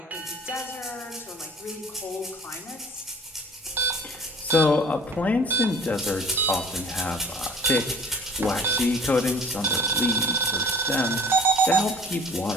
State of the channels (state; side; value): normal; both; correlation 0.47